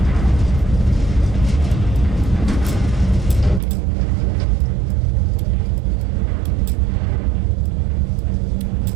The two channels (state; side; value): drops out; left; at 3.6 s